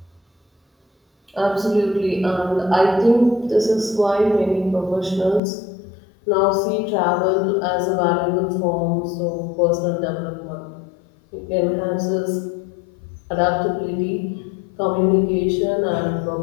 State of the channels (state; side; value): drops out; right; at 5.4 s